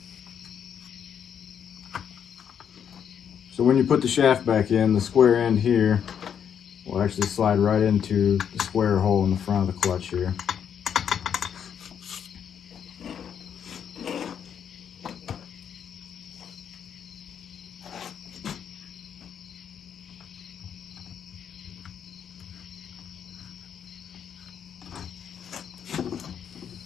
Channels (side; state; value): right; quieter; 8.2 dB